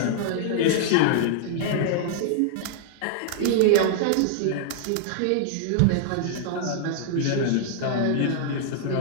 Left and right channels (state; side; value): different; both; correlation -0.01